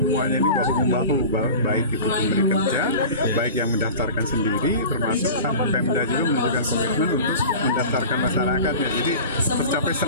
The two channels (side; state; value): both; inverted; correlation -0.36